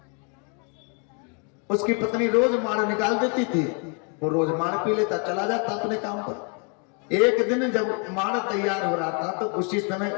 उसकी पत्नी रोज मार निकाल देती थी, वो रोज मार पी लेता, चला जाता अपने काम पर। एक दिन जब मार तैयार हो रहा था तो उसी समय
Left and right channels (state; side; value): quieter; right; 37.4 dB